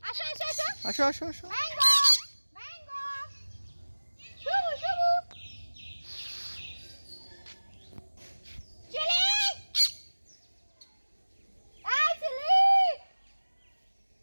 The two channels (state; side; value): inverted; both; correlation -1.00